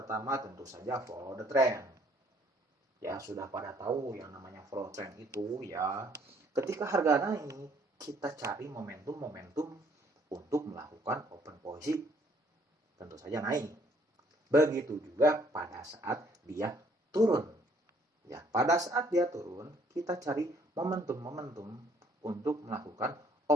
tentu saja follow the trend. Ya, sudah pada tahu yang namanya follow trend itu, ya. Ketika harga naik, kita cari momentum-momentum untuk melakukan open posisi. Tentu saja naik. Begitu juga pada saat dia turun. Ya, pada saat dia turun, kita cari momentum-momentum untuk melakukan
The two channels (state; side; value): normal; both; correlation 0.63